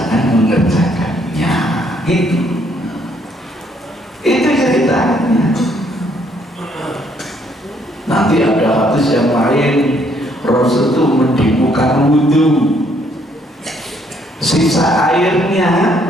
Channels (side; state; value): both; normal; correlation 0.68